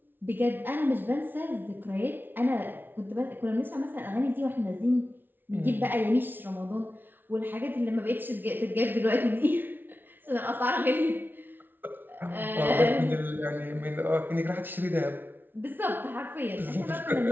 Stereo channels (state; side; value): late; left; 0.095 ms